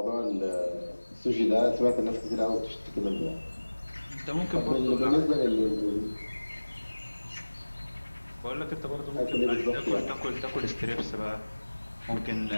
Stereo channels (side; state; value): both; inverted; correlation -1.00